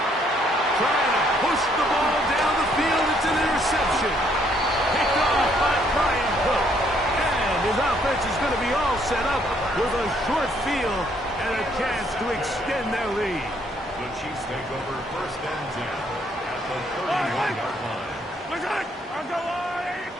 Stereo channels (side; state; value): both; normal; correlation 0.68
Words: Trying to push the ball down the field. It's an interception. Picked off by Brian Cook. And his offense is going to be all set up with a short field and a chance to extend their lead. The Chiefs take over first and 10 at the 31-yard line. I'll go on.